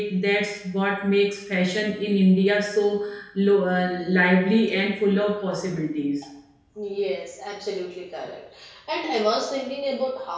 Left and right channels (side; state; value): both; identical; correlation 1.00